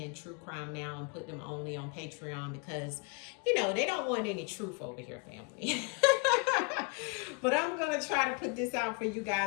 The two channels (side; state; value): right; quieter; 33.6 dB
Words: true crime now and put them only on Patreon because, they don't want any truth over here, family. But I'm going to try to put this out for you